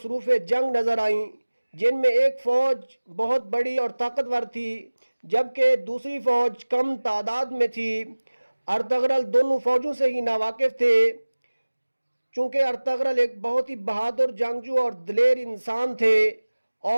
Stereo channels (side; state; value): both; inverted; correlation -1.00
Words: جنگ نظر آئیں، جن میں ایک فوج بہت بڑی اور طاقتور تھی جبکہ دوسری فوج کم تعداد میں تھی۔ ارطغرل دونوں فوجوں سے ہی ناواقف تھے، چونکہ ارطغرل ایک بہت ہی بہادر جنگجو اور دلیر انسان تھے